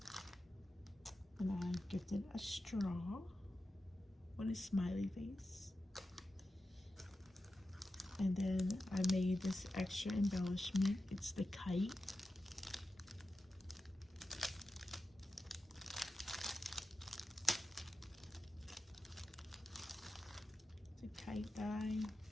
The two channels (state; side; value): normal; both; correlation 0.92